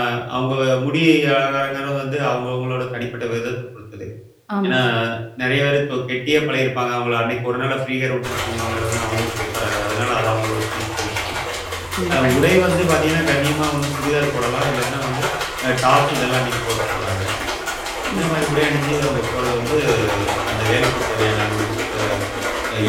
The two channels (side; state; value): both; identical; correlation 1.00